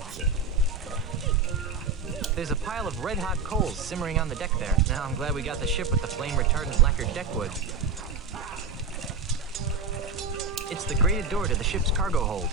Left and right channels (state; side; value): quieter; left; 4.6 dB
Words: There's a pile of red-hot coals simmering on the deck there. Now I'm glad we got the ship with the flame-retardant lacquered deckwood. It's the grated door to the ship's cargo hold.